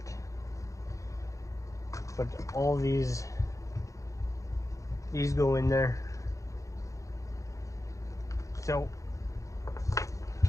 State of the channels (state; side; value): late; right; 0.15 ms